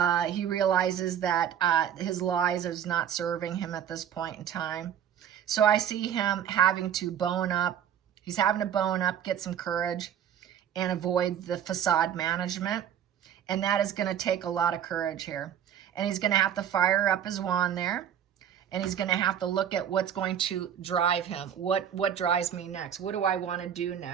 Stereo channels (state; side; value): quieter; left; 9.4 dB